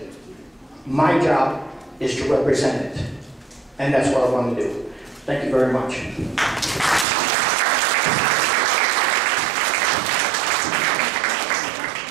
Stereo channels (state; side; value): drops out; left; at 7.1 s